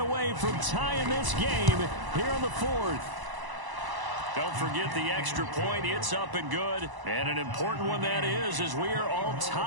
away from tying this game here in the 4th. Don't forget the extra point. It's up and good. And an important one that is, as we are all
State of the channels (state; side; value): late; left; 1.0 ms